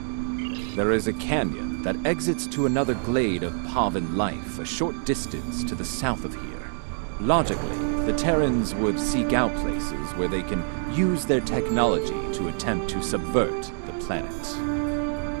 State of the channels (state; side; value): silent; left; 61 dB below the other